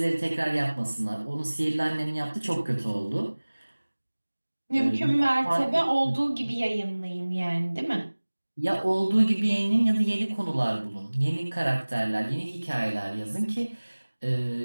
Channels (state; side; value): inverted; both; correlation -1.00